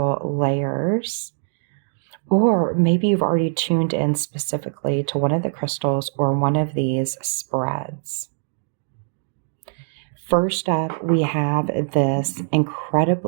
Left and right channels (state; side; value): silent; left; digital silence